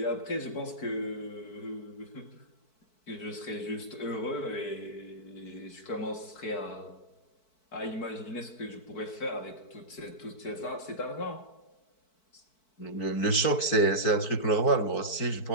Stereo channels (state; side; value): late; right; 4.6 ms